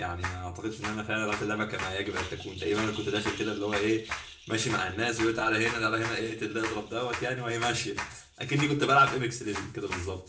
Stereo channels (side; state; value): both; identical; correlation 1.00